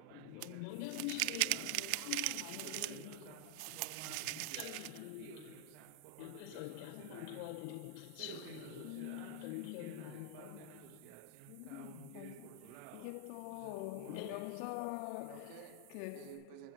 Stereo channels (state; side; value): different; both; correlation 0.00